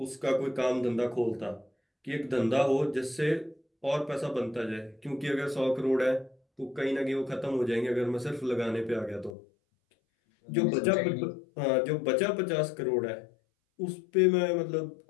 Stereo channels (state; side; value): drops out; right; at 9.3 s